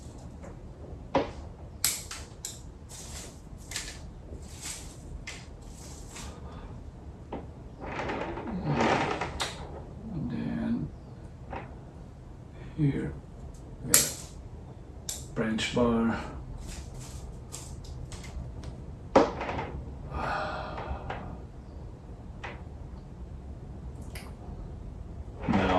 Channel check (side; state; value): both; identical; correlation 1.00